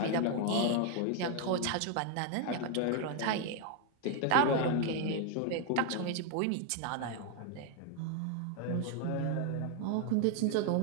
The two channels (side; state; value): both; different; correlation 0.01